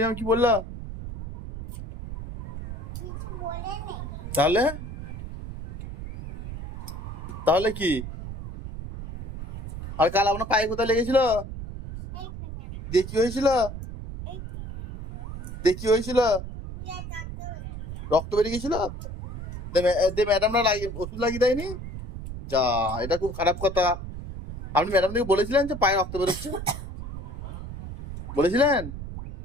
ম্যাম কি বললো? তাহলে তাহলে কি? আর কাল আপনার পায়ে কোথায় লেগেছিল? দেখি হয়েছিল? দেখি হয়েছিল? রক্ত বেরিয়ে গেছিল? ম্যাডামরা ওষুধ লাগিয়ে দেয়নি? যা, এটা খুব খারাপ কথা। আপনি ম্যাডামকে বলেছিলেন যে পায়ে রক্ত বেরোচ্ছে? বলেছিলেন?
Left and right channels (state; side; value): noise; right; rumble, 8 dB below the sound